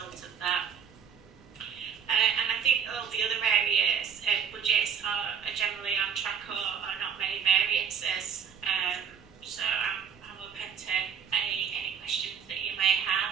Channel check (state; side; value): quieter; left; 7.4 dB